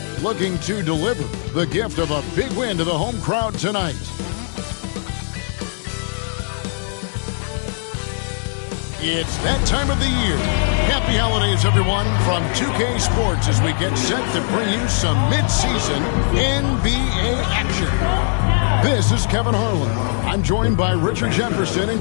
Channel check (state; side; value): silent; right; 66 dB below the other